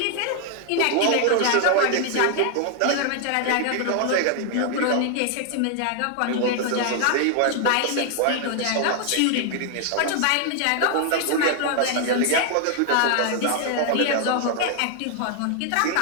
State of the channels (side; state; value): both; different; correlation 0.00